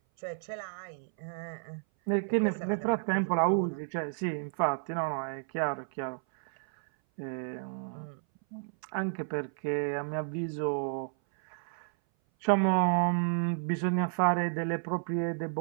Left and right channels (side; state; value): left; silent; 57 dB below the other